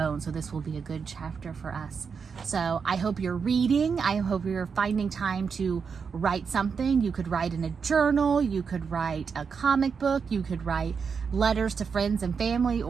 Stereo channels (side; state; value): left; quieter; 5.9 dB